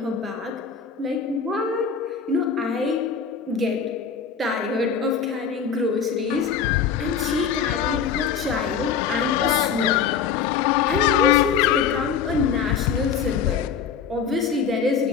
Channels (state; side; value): quieter; right; 6.6 dB